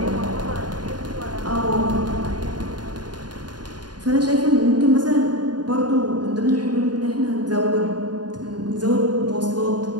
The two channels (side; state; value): left; late; 0.70 ms